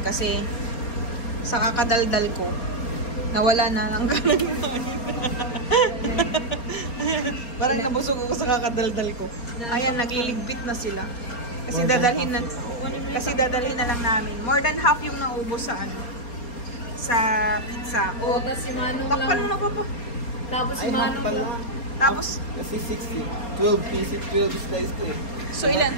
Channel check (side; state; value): right; late; 4.3 ms